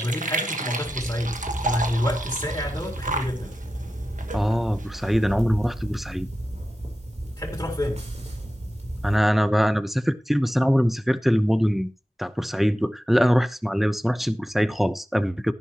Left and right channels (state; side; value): normal; both; correlation 0.92